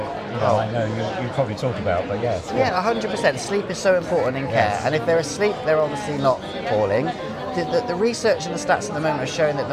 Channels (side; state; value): both; identical; correlation 1.00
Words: I know you probably talk about, but yes. Yeah, 100%. Sleep is so important in care, and if they're asleep, they're obviously not falling. The research and the stats at the moment are showing that